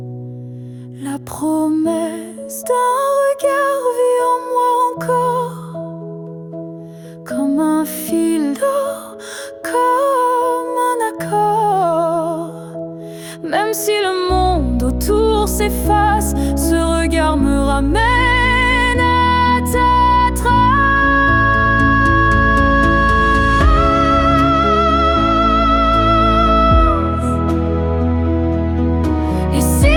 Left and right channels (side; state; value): both; identical; correlation 1.00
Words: La promesse d'un regard vit en moi encore, comme un fil d'or, comme un accord. Même si le monde autour s'efface, ce regard me ramène à ta trace. Et si